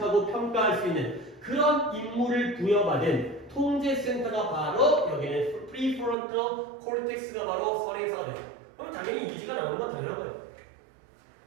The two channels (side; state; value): left; drops out; at 6.2 s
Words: 평가할 수 있는 그런 임무를 부여받은 통제센터가 바로 여기는 prefrontal cortex가 바로 선행사가 돼요. 그럼 당연히 이지가 나오는 건 당연한 거예요.